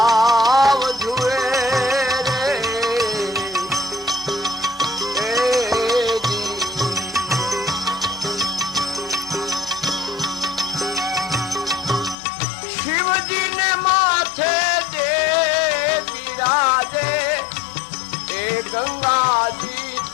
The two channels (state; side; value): drops out; right; at 12.2 s